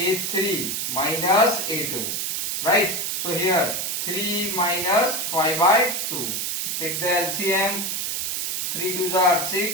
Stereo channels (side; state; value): right; noise; hiss, 1 dB below the sound